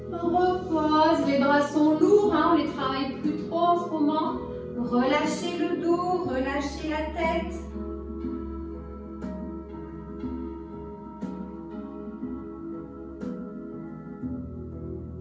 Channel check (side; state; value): both; identical; correlation 1.00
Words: Repose, les bras sont lourds, hein, on ne les travaille plus trop en ce moment. Relâchez le dos, relâchez la tête.